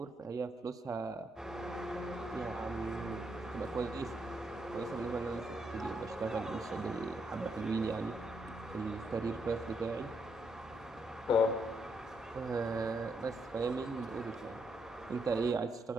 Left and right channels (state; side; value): normal; both; correlation 0.77